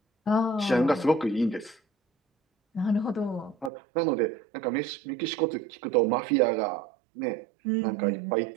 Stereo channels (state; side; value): drops out; left; at 3.7 s